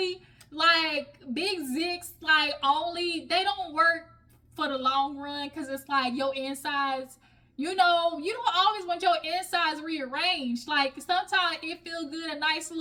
like, big zigs, like, only, they don't work for the long run, because it's like your insides, you know, you don't always want your insides rearranged. Like, sometimes it feels good, a nice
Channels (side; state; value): both; identical; correlation 1.00